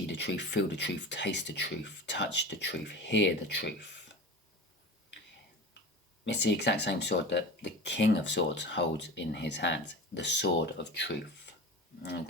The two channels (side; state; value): both; normal; correlation 0.32